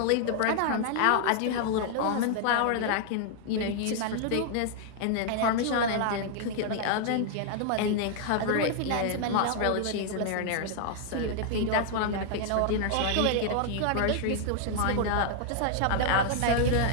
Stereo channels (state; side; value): different; both; correlation 0.00